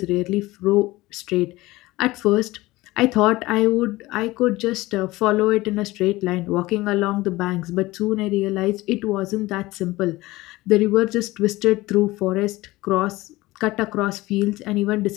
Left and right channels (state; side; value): quieter; right; 19.4 dB